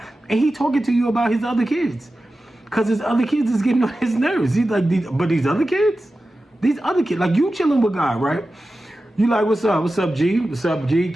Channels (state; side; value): normal; both; correlation 0.94